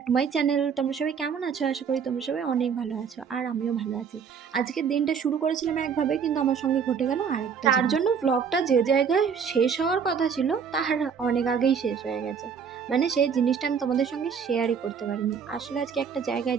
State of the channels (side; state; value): left; quieter; 6.7 dB